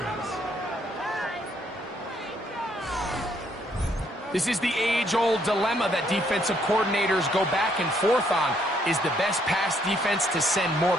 This is the age-old dilemma that defensive coordinators go back and forth on. Is the best pass defense to send more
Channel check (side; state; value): both; normal; correlation 0.70